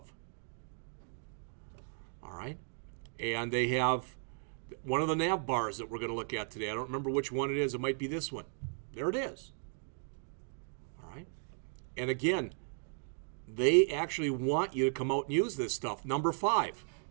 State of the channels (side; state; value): left; silent; 54 dB below the other